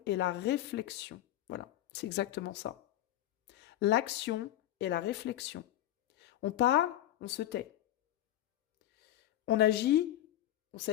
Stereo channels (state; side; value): quieter; right; 13.3 dB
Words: et la réflexion. Voilà, c'est exactement ça. L'action et la réflexion. On parle, on se tait. On agit, on